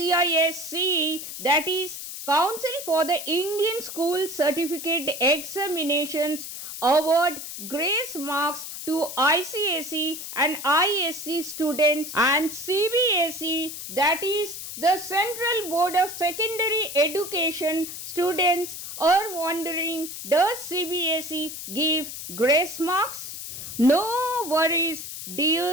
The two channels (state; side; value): noise; left; hiss, 9 dB below the sound